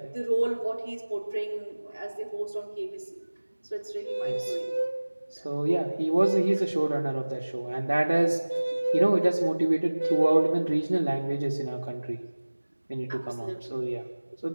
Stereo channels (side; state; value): both; inverted; correlation -1.00